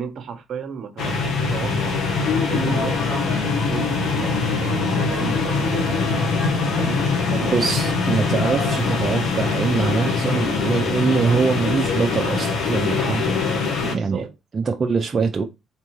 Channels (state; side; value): normal; both; correlation 0.63